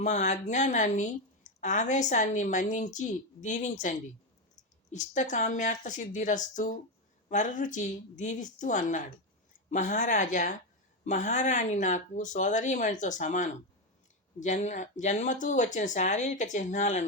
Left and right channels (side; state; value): both; normal; correlation 0.10